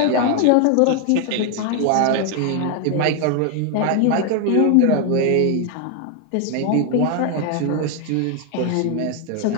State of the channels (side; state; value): both; different; correlation 0.01